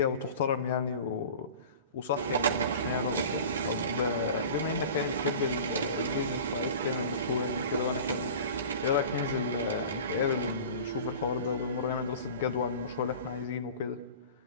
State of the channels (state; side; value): inverted; both; correlation -0.38